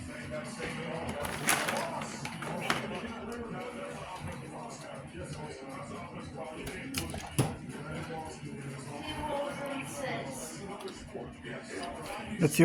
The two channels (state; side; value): identical; both; correlation 1.00